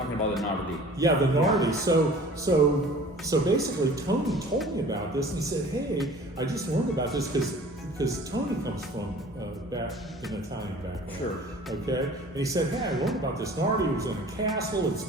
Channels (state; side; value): normal; both; correlation 0.46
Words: about the Nardi. Yeah, the Nardi. So basically, Tony told me about this, and he said, "Hey, I just learned about this because Tony comes from back an Italian background. Sure. Okay. And he said, "Hey, I learned about this Nardi. It was in a castle. It's